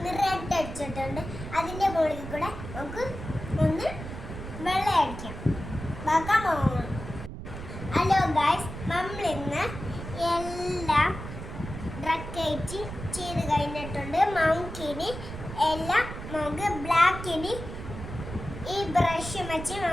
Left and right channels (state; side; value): noise; right; rumble, 9 dB below the sound